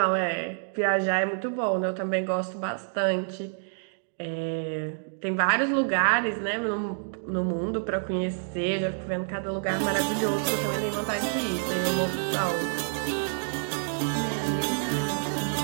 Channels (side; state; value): left; silent; digital silence